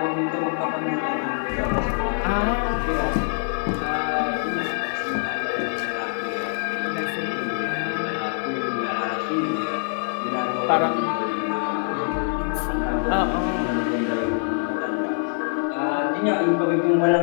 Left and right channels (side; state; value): right; silent; digital silence